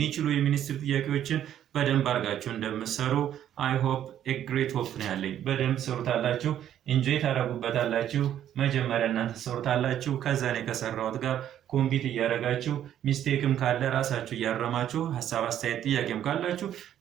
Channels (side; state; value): left; quieter; 10.8 dB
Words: የሚኒስትሪ ጥያቄዎችን በደንብ አድርጋችሁ እንደምትሰሩ I hope a great hope ነው ያለኝ በደንብ ሰሩታላችሁ ኢንጆይ ታደርጉበታላችሁ መጀመሪያ እናንተ ትሰሩታላችሁ። ከዛ እኔ ከሰራሁት ጋር ኮምፒት እያደረጋችሁ ሚስቴክም ካለ ራሳችሁ እያረማችሁ ሀሳብ፣ አስተያየት፣ ጥያቄም ካላችሁ